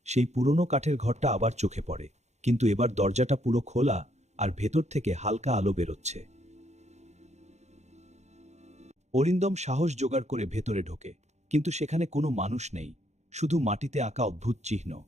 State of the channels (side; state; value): left; late; 0.33 ms